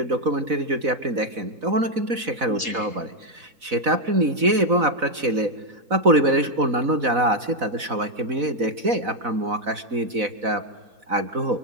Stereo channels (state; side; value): late; left; 4.0 ms